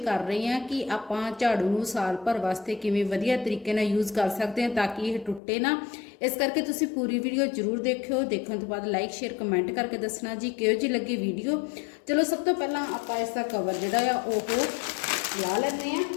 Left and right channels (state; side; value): drops out; right; at 5.4 s